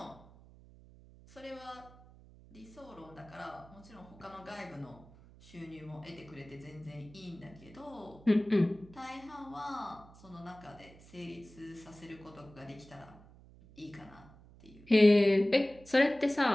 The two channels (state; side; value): noise; right; hum, 22 dB below the sound